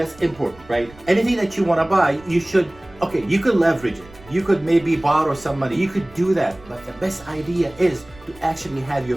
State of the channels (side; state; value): right; noise; rumble, 23 dB below the sound